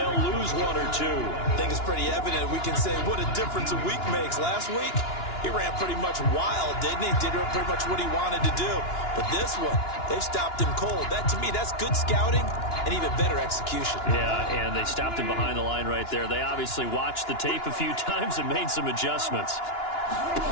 lose 1 or 2. I think it's pretty evident. We can say what a difference a week makes. Last week, he ran pretty much wild, didn't he? Did pretty much what he wanted to do. But this one, they've stopped him cold. That, to me, that's good scouting and even better execution. Yeah, and they stopped him behind the line right there. They obviously watched the tape a few times and made some adjustments.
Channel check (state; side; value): late; right; 2.9 ms